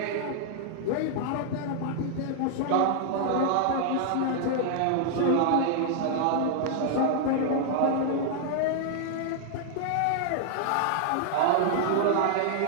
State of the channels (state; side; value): different; both; correlation -0.01